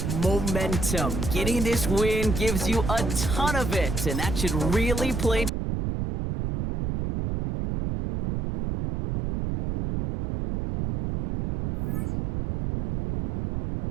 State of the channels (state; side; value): noise; right; rumble, 2 dB below the sound